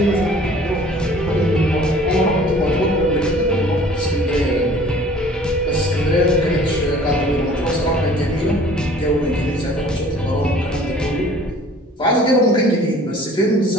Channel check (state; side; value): normal; both; correlation 0.51